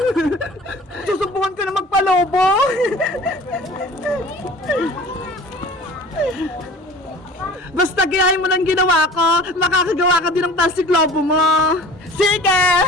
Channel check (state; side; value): normal; both; correlation 0.43